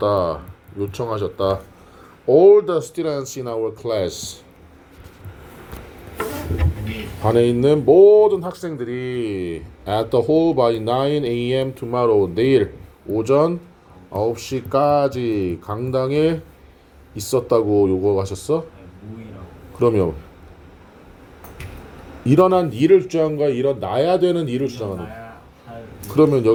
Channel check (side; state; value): both; identical; correlation 1.00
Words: 요청하셨다. All the students in our class. 반에 있는 모든 학생들이 at the hall by 9 a.m. tomorrow. 내일 오전 9시까지 강당에 있었다고 요구하셨어? 모이라고. 그러면 일어난 일을 주장한 거야? 일어나야 되는 일을 주장하는 거야? 나야 할 그러면